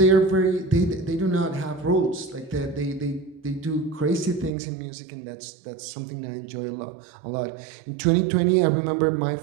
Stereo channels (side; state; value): left; drops out; at 4.5 s